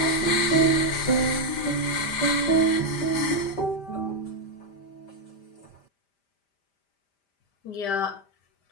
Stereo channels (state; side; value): late; right; 5.0 ms